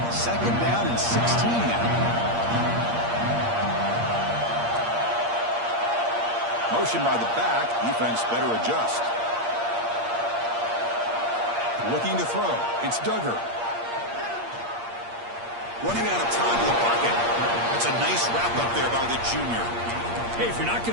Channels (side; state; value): left; late; 8.6 ms